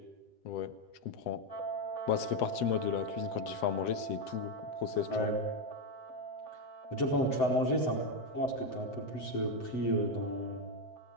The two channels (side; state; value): right; late; 7.9 ms